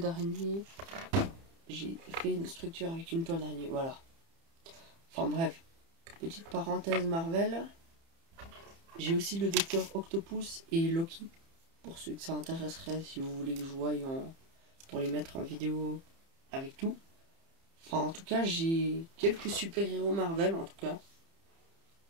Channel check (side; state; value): left; late; 30 ms